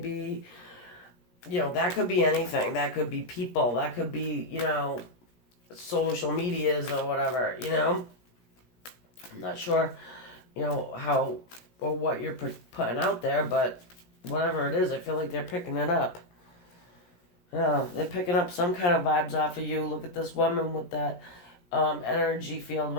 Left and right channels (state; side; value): late; right; 17 ms